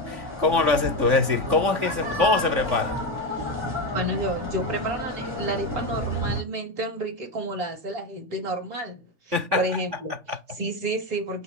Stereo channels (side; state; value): left; late; 3.5 ms